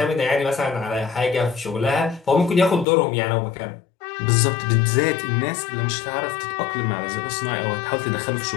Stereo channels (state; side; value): drops out; right; at 2.9 s